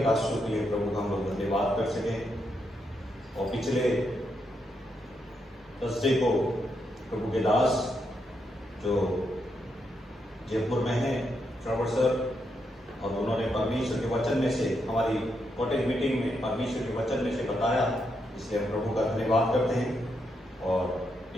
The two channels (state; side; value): normal; both; correlation 0.81